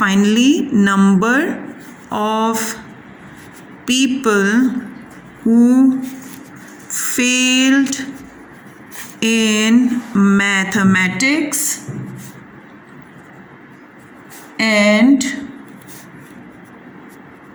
number of people who failed in mathematics and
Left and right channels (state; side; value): identical; both; correlation 1.00